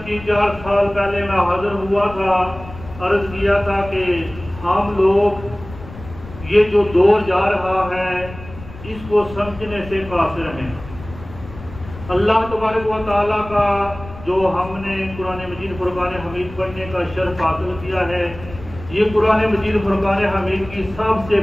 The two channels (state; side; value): noise; left; rumble, 15 dB below the sound